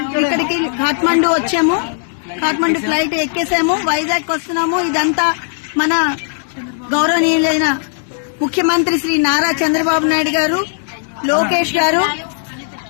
ఇక్కడికి కాఠ్మండు వచ్చాము. కాఠ్మండు ఫ్లైట్ ఎక్కేసాము, వైజాగ్ వస్తున్నాము. ఇదంతా మన గౌరవనీయులైన ముఖ్యమంత్రి శ్రీ నారా చంద్రబాబు నాయుడు గారు, లోకేష్ గారు,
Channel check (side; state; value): right; silent; digital silence